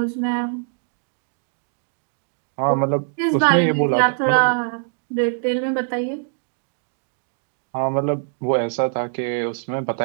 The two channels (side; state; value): left; silent; digital silence